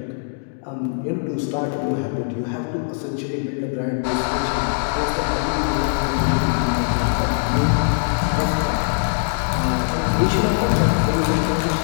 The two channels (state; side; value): silent; right; digital silence